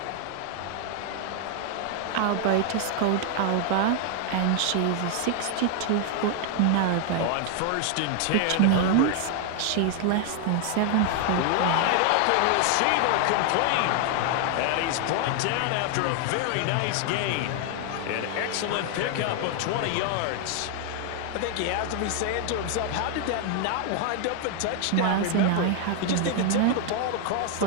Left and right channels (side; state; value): both; different; correlation 0.00